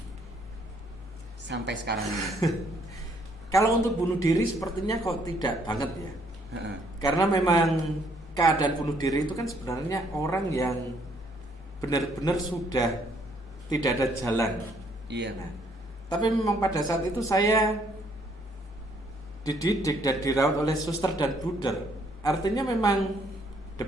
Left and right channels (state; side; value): normal; both; correlation 0.67